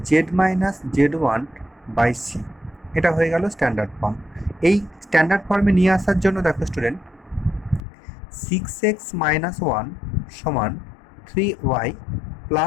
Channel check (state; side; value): drops out; right; at 7.8 s